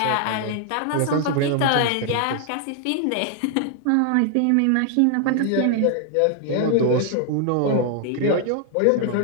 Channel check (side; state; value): both; different; correlation 0.00